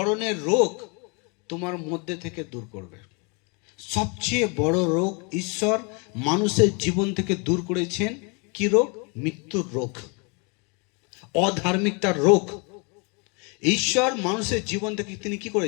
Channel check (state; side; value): quieter; right; 33.1 dB